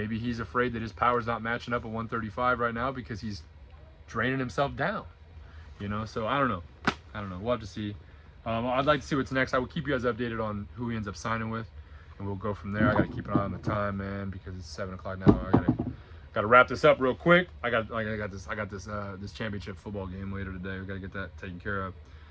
he's afraid that his power's not matching up at 135 right now because he's draining himself down. So I don't know. We'll have to see. I'd like to see what's next. I will keep you guys updated on who he ends up signing with, and we'll go from there. I got to keep an eye on the time, man, because it's 7 o'clock now. I gotta wrap this up real quick. I got this championship football game later today. We gotta get that taken care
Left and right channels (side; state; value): both; identical; correlation 1.00